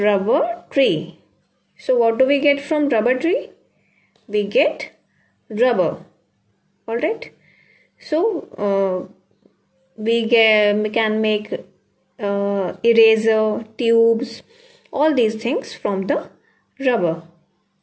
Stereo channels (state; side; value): identical; both; correlation 1.00